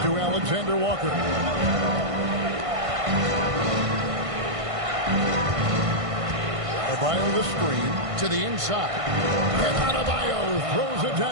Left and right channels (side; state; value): left; late; 1.5 ms